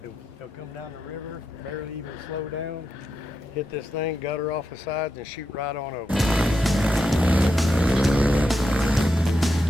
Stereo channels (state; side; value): normal; both; correlation 0.86